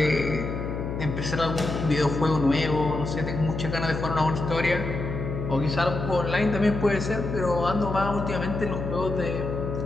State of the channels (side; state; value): left; noise; hum, 5 dB below the sound